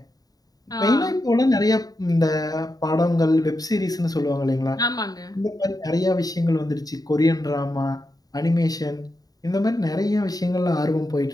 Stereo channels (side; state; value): right; late; 0.18 ms